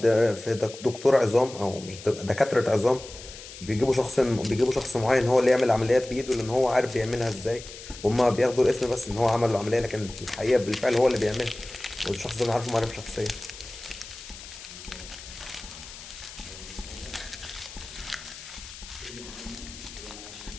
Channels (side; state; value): left; noise; hiss, 15 dB below the sound